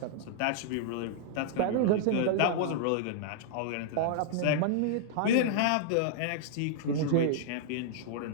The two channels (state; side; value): different; both; correlation -0.01